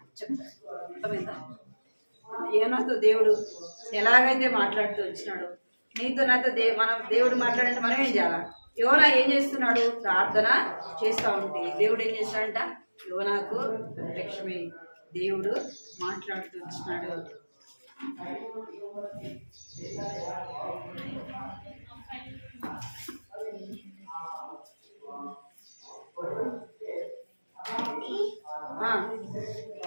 చెప్తాడు. అర్థమైందా? యోనాతో దేవుడు ఎలాగైతే మాట్లాడుతూ వచ్చినాడో నీతో నాతో మనం దేవుడు మాట్లాడంటే మనం ఏం చేయాలా? యోనా ఏం చేస్తున్నాడు? ప్రార్థన చేస్తూ ఉంటే దేవుడు ఏం చేస్తాడంట? యోనాకు ప్రత్యక్షమై దేవుడు మాట్లాడుతూ వచ్చినాడు.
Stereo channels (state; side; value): inverted; both; correlation -1.00